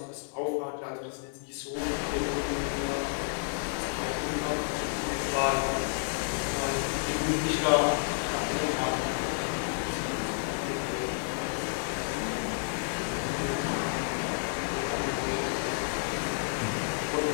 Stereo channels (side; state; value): right; silent; 57 dB below the other